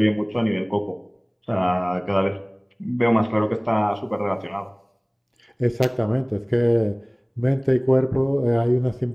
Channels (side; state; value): both; identical; correlation 1.00